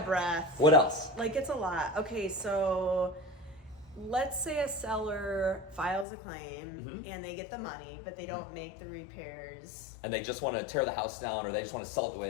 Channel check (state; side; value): drops out; right; at 6.1 s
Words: a breath. What else? Like it's a lot. Okay, so let's say a seller files a claim and they get the money, but they don't make the repairs. And they just want to tear the house down, or they just want to sell it the way it